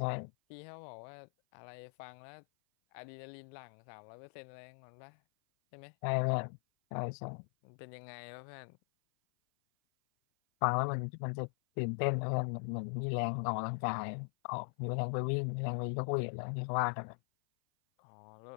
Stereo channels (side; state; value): right; silent; 51 dB below the other